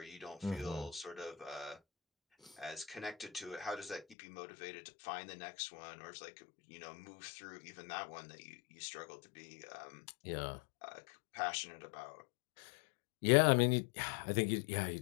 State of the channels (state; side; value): drops out; right; at 4.2 s